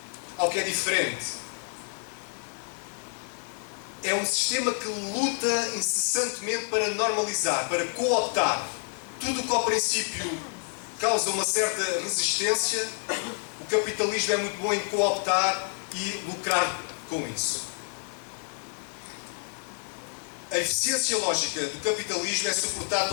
ao que é diferente. É um sistema que luta incessantemente para normalizar, para cooptar. Tudo o que ao princípio causa uma certa resistência, o capitalismo é muito bom em cooptar e lucrar com isso. A eficiência lógica do capitalismo é suportada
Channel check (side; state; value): right; silent; 57 dB below the other